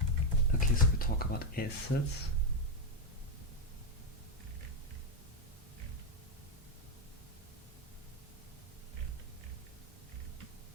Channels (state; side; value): normal; both; correlation 0.04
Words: okay, so we talk about assets.